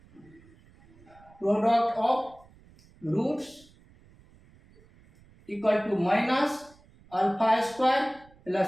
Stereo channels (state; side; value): noise; right; rumble, 27 dB below the sound